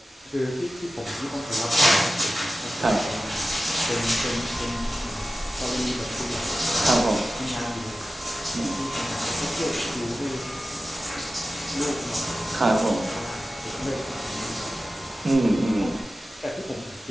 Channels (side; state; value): both; normal; correlation 0.94